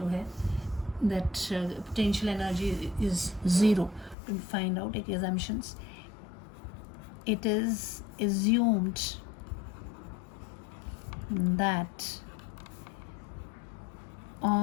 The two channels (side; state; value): right; drops out; at 4.2 s